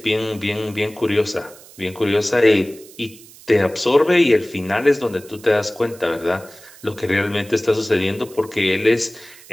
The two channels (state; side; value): noise; right; hiss, 21 dB below the sound